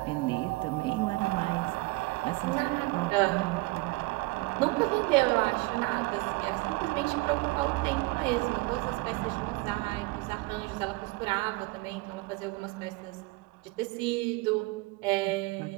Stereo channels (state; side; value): quieter; left; 23.0 dB